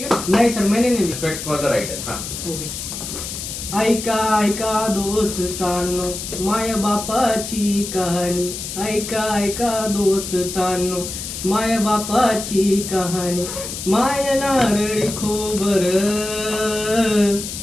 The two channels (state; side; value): noise; left; hiss, 7 dB below the sound